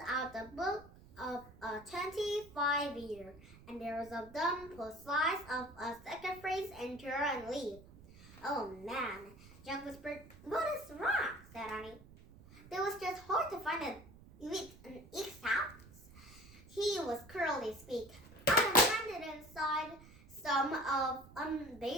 out the book of a 25 year, and there was a done slice of a second phrase, enter and leave. Oh man, Jack whispered. What is wrong? Said Annie. It was just hard to find an X house. He was curly speak. I am landed inside some of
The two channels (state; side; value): noise; right; rumble, 21 dB below the sound